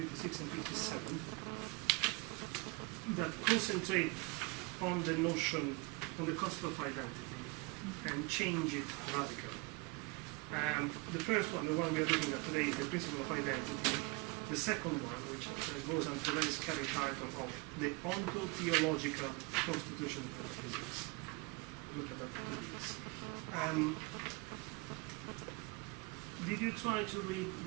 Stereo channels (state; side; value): quieter; left; 27.9 dB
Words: and 57 that concentrate on the notion, on the concept of identity and change it radically. The first one, the one we are looking at today, is the principle of identity. The second one, which goes on to the very scary title of the ontological constitution of metaphysics. Look at that, please. Did you try to read